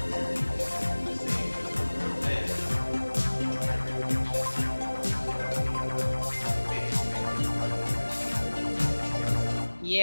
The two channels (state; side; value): inverted; both; correlation -1.00